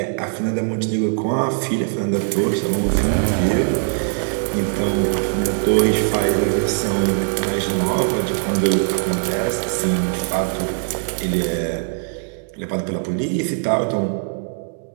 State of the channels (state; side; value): silent; left; digital silence